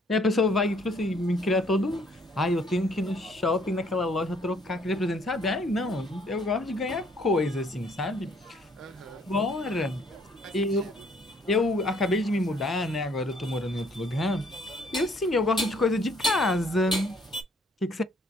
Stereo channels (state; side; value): normal; both; correlation 0.63